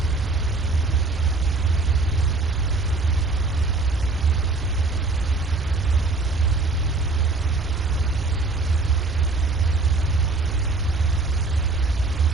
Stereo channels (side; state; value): left; quieter; 3.5 dB